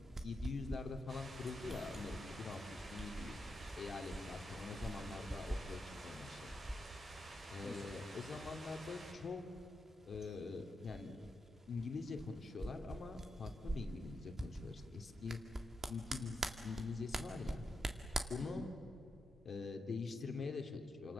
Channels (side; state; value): both; normal; correlation 0.85